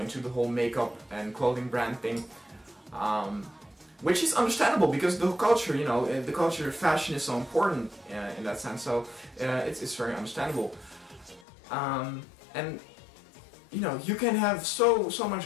the whole makeup and clothing brand thing. Which is understandable because the culture, you know, the culture of fashion is so important in that sense. So it's very understandable. And you know, you can have so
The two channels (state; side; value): drops out; right; at 11.5 s